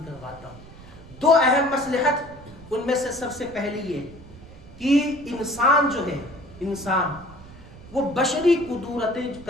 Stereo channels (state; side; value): noise; right; rumble, 19 dB below the sound